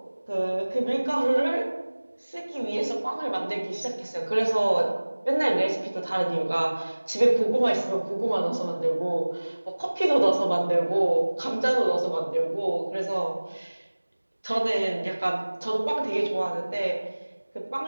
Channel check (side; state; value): both; inverted; correlation -1.00